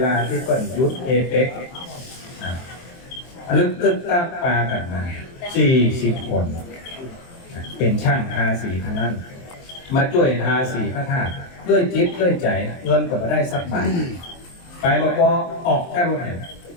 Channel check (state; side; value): late; right; 23 ms